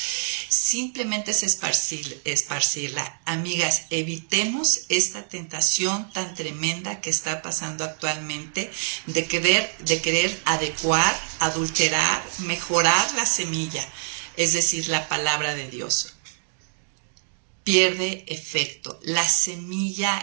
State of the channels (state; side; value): silent; left; digital silence